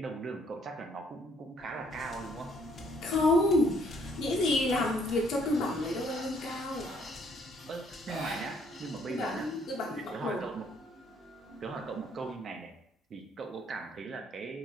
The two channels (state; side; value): normal; both; correlation 0.65